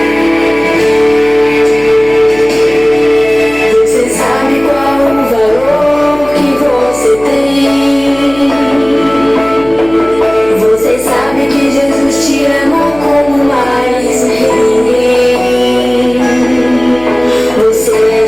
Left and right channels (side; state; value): left; noise; hum, 19 dB below the sound